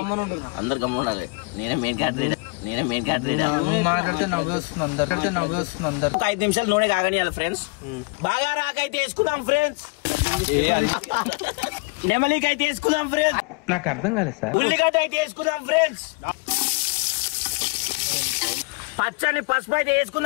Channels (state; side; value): quieter; right; 29.6 dB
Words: అందరు గమ్ముండాలి. నేనే మెయిన్ క్యాటరీ మాట్లాడితే నవ్వేస్తుంది అందరు. ఒక 5 నిమిషాలు నూనె కాగనియాలి ఫ్రెండ్స్. బాగా రాకైతే వేసుకుందాం ఫ్రెండ్స్. నెమలికి అయితే వేసుకుందాం ఫ్రెండ్స్. నాకు అర్థం కాలేదు సార్. ఉల్లిగడ్డ అయితే వేసుకుందాం ఫ్రెండ్స్. పచ్చని పసుపు అయితే